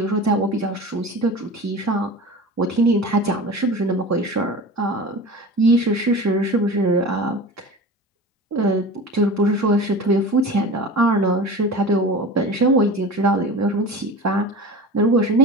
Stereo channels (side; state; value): both; normal; correlation 0.33